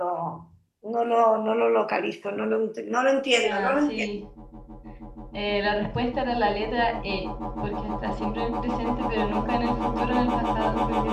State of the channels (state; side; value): identical; both; correlation 1.00